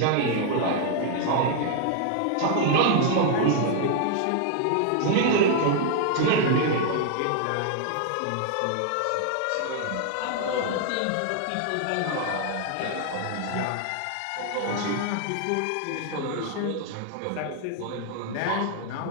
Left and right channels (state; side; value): different; both; correlation 0.00